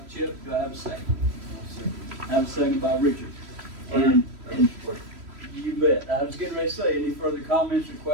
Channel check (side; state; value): left; late; 3.1 ms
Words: Chip. Do I have a second? I have a second by Richard. And you bet. I was getting ready to say, any further comments or